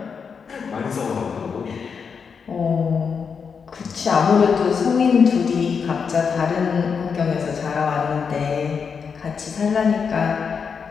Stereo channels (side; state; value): right; quieter; 6.1 dB